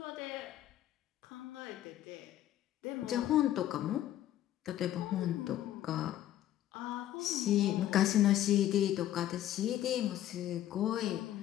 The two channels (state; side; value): quieter; right; 12.6 dB